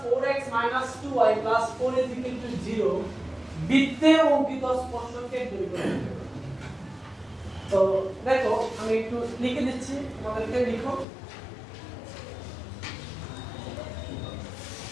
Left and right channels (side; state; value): right; drops out; at 11.1 s